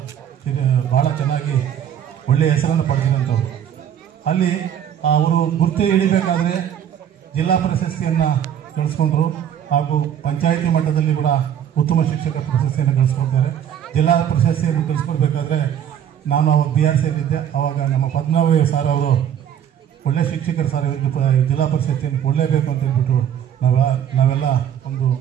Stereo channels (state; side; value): quieter; left; 9.5 dB